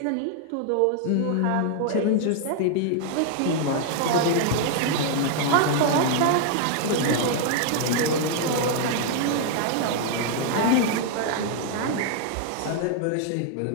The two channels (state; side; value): different; both; correlation 0.00